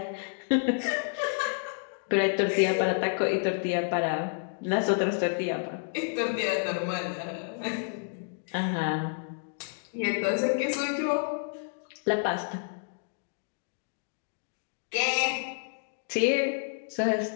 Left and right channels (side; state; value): right; silent; digital silence